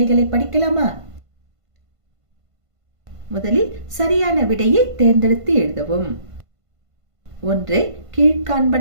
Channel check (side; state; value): left; late; 1.5 ms